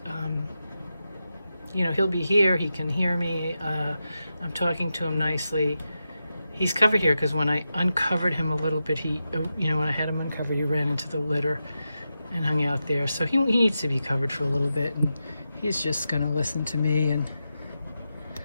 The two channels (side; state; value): both; inverted; correlation -0.89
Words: you know, he'll be here. He can hear me. I'm talking to him nicely. He's covered here because when I uncovered him a little bit, he, you know, when I had him uncovered, he ran into the litter and hung out there. So he needs to be covered for a little bit, and he's just gonna listen to me. And